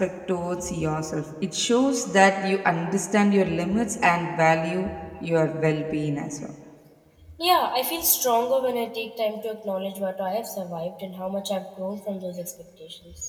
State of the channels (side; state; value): both; identical; correlation 1.00